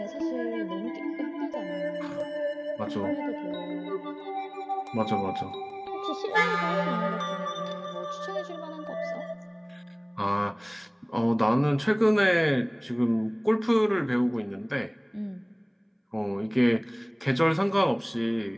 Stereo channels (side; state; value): both; identical; correlation 1.00